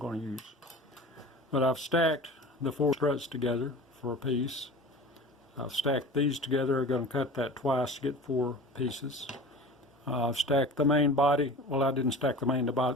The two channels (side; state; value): both; normal; correlation 0.37